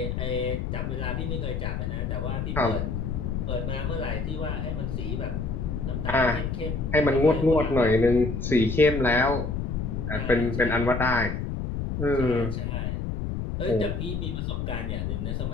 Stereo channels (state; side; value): noise; left; rumble, 2 dB below the sound